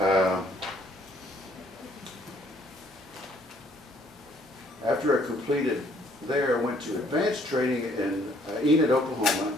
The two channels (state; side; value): normal; both; correlation 0.63